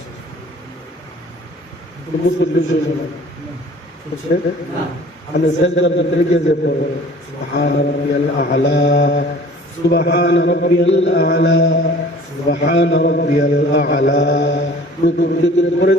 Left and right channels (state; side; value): normal; both; correlation 0.48